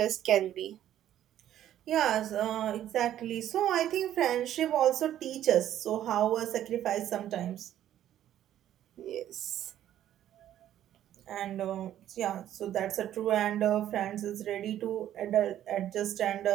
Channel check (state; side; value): quieter; left; 11.7 dB